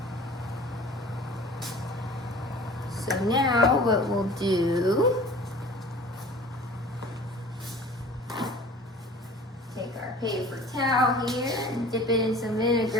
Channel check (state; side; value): normal; both; correlation 0.44